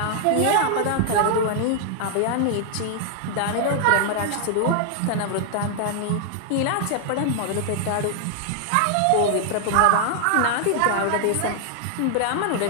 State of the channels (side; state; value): both; different; correlation -0.01